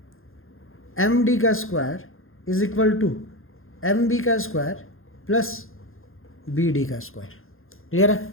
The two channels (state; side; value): late; right; 0.60 ms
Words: M D का square is equal to M B का स्क्वायर प्लस बी डी का स्क्वायर। क्लियर है?